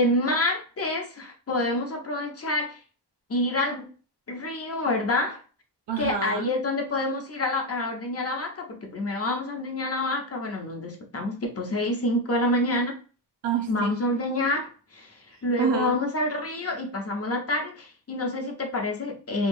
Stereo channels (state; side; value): normal; both; correlation 0.06